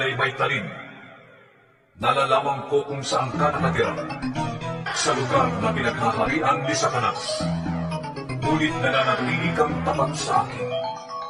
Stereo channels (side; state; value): both; identical; correlation 1.00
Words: may talim. Nalalaman ko kung saan ka nakatira, sa lugar na pinaghaharian ni Satanas. Ngunit nananatili kang tapat sa akin.